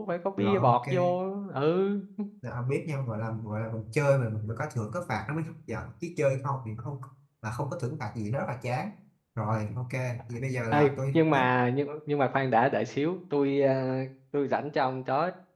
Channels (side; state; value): both; identical; correlation 1.00